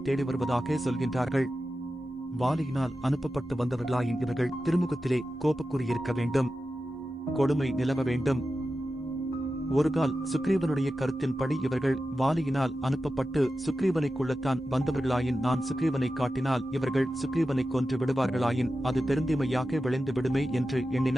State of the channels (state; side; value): normal; both; correlation 0.92